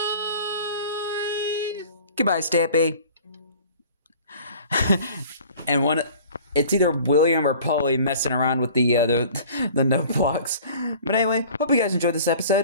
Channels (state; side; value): inverted; both; correlation -0.47